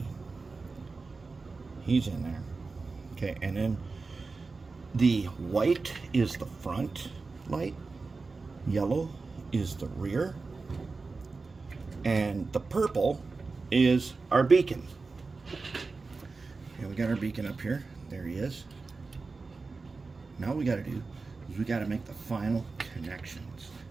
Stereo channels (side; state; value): left; quieter; 4.1 dB